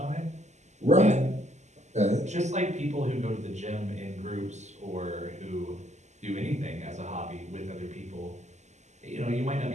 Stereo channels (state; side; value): late; left; 0.33 ms